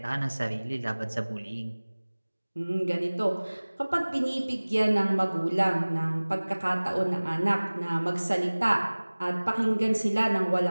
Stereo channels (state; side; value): inverted; both; correlation -1.00